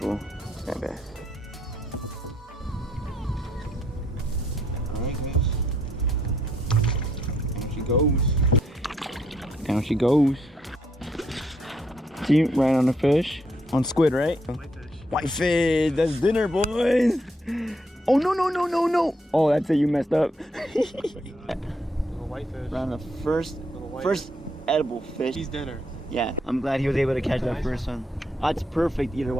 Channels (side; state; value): both; normal; correlation 0.73